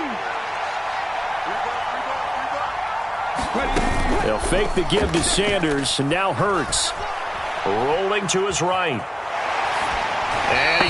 They'll fake the give to Sanders, and now Hurts. Rolling to his right. And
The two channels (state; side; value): identical; both; correlation 1.00